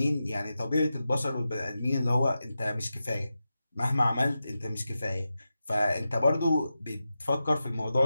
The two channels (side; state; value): both; inverted; correlation -0.91